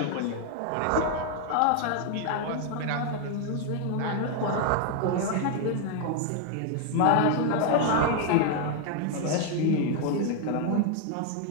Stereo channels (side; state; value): both; different; correlation 0.00